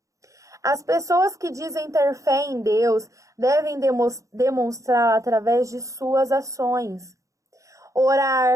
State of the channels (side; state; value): left; late; 0.15 ms